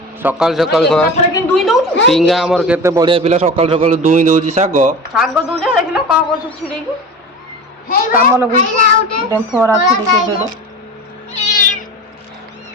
सकाल सकाल टिंगा हमर केते बढ़िया पिला सकाल सकाल दुई दउची साग साग दुजे देखिलो का कर छिड़ी की काम लगु डेम्फोरा छिड़ी के देडो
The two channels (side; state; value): both; normal; correlation 0.32